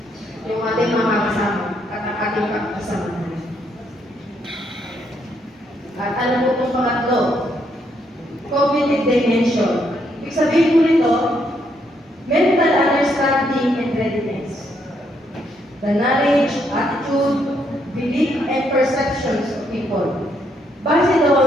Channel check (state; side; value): normal; both; correlation 0.74